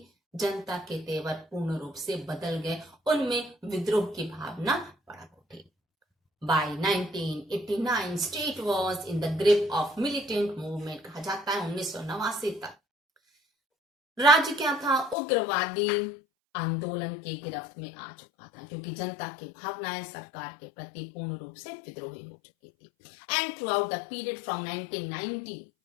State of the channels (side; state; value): right; drops out; at 15.2 s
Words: जनता के तेवर पूर्ण रूप से बदल गए, उनमें विद्रोह की भावना भड़क उठी। By 1989, state was in the grip of militant movement। कहा जाता है 1989 तक राज्य क्या था, उग्रवादी आंदोलन के गिरफ्त में आ चुका था, क्योंकि जनता की भावनाएं सरकार के प्रति पूर्ण रूप से विद्रोही हो चुकी थी। And through out the period from 1990